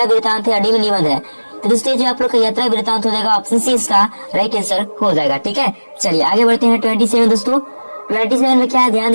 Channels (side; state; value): both; inverted; correlation -1.00